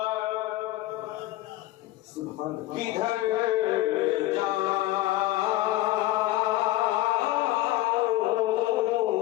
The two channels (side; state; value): right; quieter; 16.6 dB